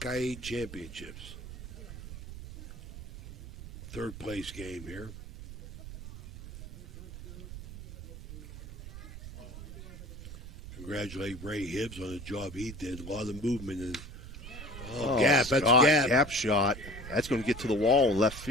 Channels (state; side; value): noise; right; rumble, 12 dB below the sound